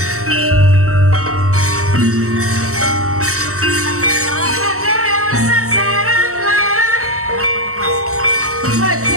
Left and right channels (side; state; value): left; late; 0.64 ms